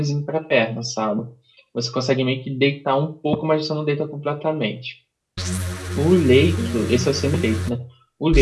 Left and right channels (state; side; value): identical; both; correlation 1.00